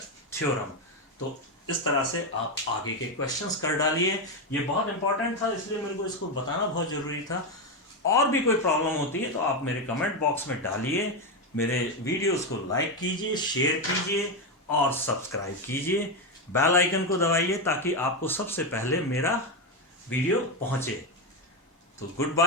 theorem. तो इस तरह से आप आगे के क्वेश्चंस कर डालिए, ये बहुत इंपॉर्टेंट था इसलिए मेरे को इसको बताना बहुत जरूरी था। और भी कोई प्रॉब्लम होती है तो आप मेरे कमेंट बॉक्स में डालिए, मेरे वीडियोस को लाइक कीजिए, शेयर कीजिए और सब्सक्राइब कीजिए, बेल आइकन को दबाइए ताकि आपको सबसे पहले मेरा वीडियो पहुंचे। तो गुड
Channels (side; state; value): both; normal; correlation 0.09